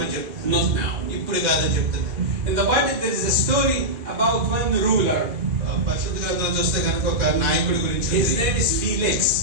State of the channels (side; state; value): left; late; 2.4 ms